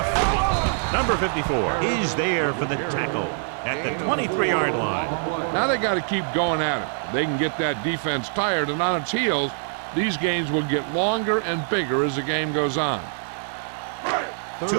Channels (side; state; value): left; silent; digital silence